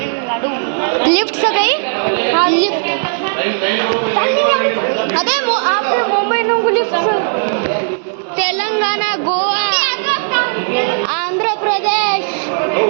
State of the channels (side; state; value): left; silent; digital silence